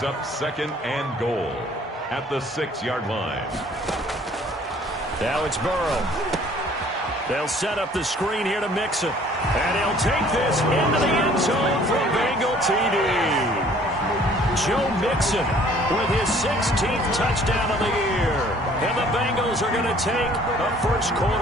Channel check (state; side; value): normal; both; correlation 0.55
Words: up 2nd and goal at the 6-yard line. Now it's Burrow. They'll set up the screen here to Mixon. And he'll take this into the end zone for a Bengal TD. Joe Mixon with his 16th touchdown of the year. And the Bengals are going to take a